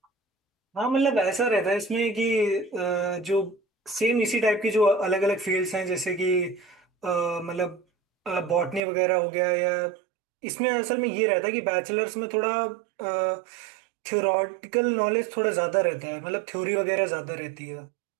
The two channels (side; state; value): left; drops out; at 8.8 s